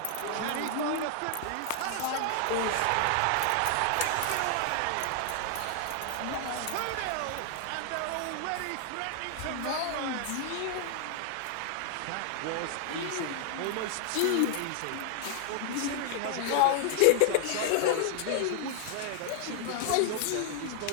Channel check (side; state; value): both; different; correlation 0.00